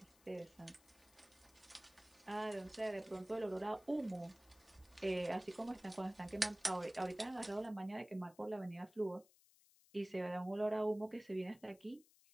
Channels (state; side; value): noise; left; hiss, 27 dB below the sound